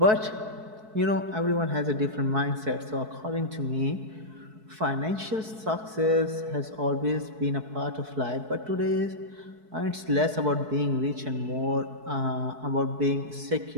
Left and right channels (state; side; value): late; left; 4.6 ms